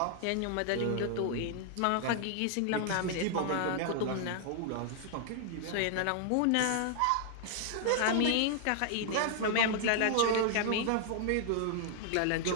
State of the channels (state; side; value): different; both; correlation 0.00